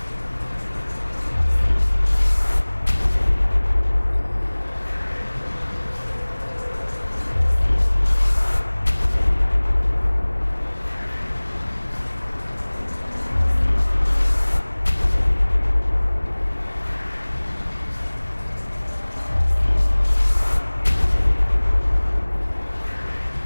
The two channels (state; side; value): inverted; both; correlation -1.00